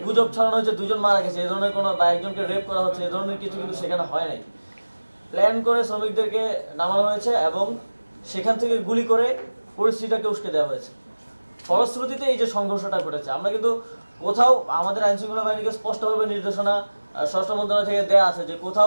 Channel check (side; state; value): both; inverted; correlation -1.00